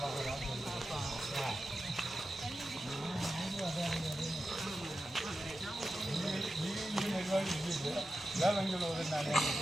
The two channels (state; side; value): normal; both; correlation 0.91